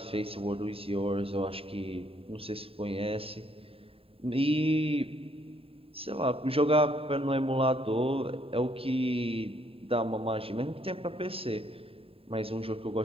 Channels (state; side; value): late; left; 0.27 ms